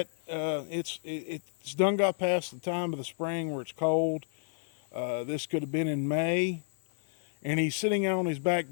It's done got past the time of the spring where it's cold. This could have been in May, and he's sitting out on his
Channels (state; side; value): silent; right; 57 dB below the other